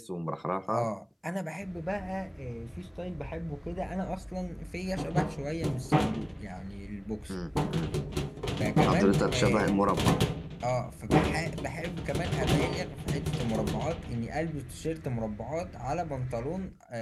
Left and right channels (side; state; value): both; identical; correlation 1.00